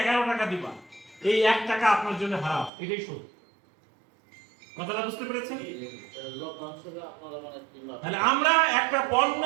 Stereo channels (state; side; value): drops out; left; at 2.7 s